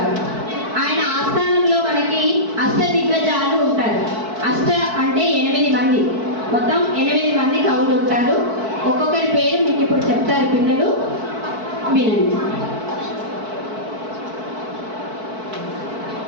ఆయన ఆస్థానంలో మనకి అష్ట దిగ్గజాలు ఉంటారు. అష్ట అంటే 8 మంది, మొత్తం 8 మంది కవులు ఉంటారు. ఒక్కొక్కరి పేరు మీకు ఇప్పుడు చెప్తారు పిల్లలు, వినండి.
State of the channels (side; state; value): left; late; 4.6 ms